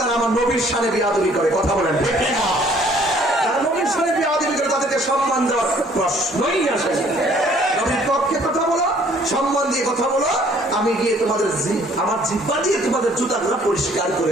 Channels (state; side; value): normal; both; correlation 0.59